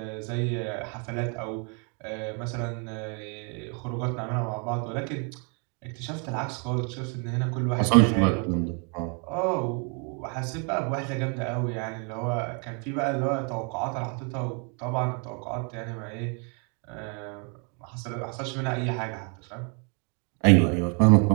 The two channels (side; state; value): left; quieter; 36.7 dB